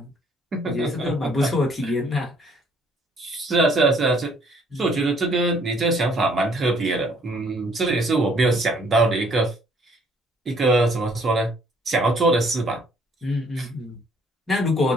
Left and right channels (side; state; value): both; normal; correlation 0.62